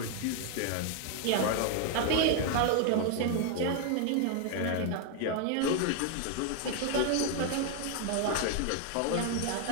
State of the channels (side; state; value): both; different; correlation 0.00